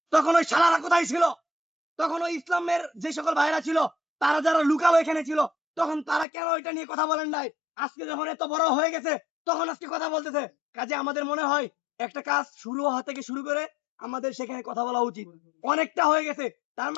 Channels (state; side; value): drops out; right; at 6.2 s